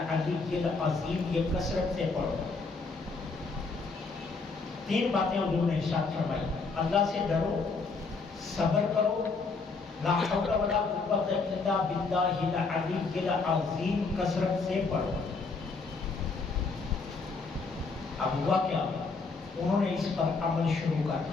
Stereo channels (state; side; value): quieter; right; 4.2 dB